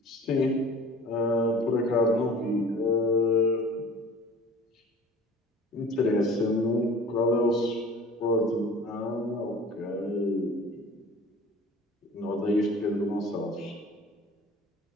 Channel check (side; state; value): both; normal; correlation 0.44